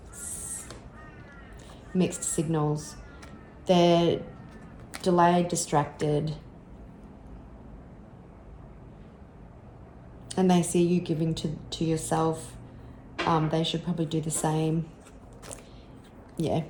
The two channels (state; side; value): identical; both; correlation 1.00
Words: mixed signals. They're delayed, distracted, and they see you giving to yourself. They should probably do the same. Yeah,